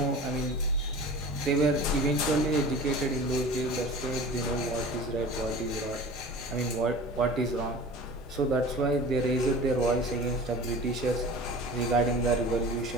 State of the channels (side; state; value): both; normal; correlation 0.38